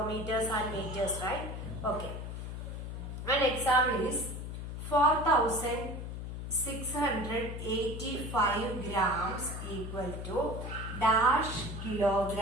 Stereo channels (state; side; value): noise; left; hum, 7 dB below the sound